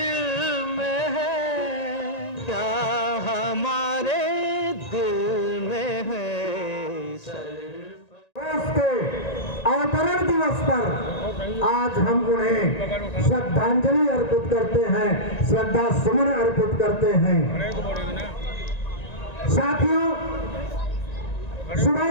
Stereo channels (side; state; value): right; late; 1.9 ms